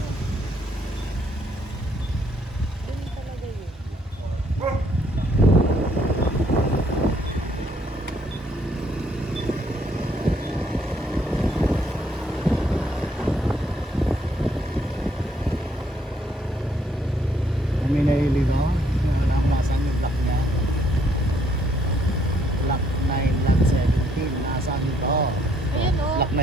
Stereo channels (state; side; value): normal; both; correlation 0.69